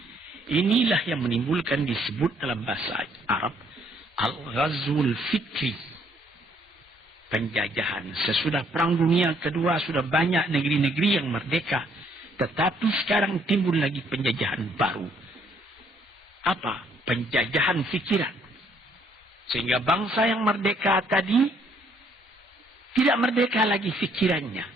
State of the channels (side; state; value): both; normal; correlation 0.67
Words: Inilah yang menimbulkan, disebut dalam bahasa Arab, al-ghazwul fikri. Penjajahan. Sesudah Perang Dunia Kedua sudah banyak negeri-negeri yang merdeka. Tetapi sekarang timbul lagi penjajahan baru. Apa? Penjajahan fikiran. Sehingga bangsa yang merdeka tadi tidak merdeka lagi fikirannya.